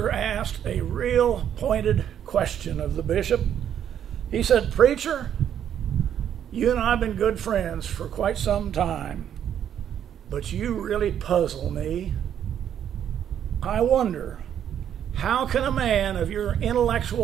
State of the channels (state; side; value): quieter; left; 9.6 dB